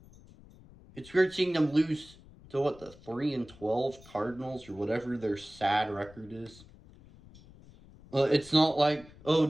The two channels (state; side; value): noise; left; rumble, 22 dB below the sound